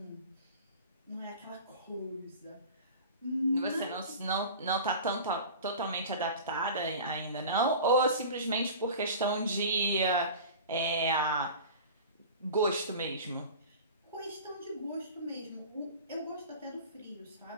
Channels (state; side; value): inverted; both; correlation -0.37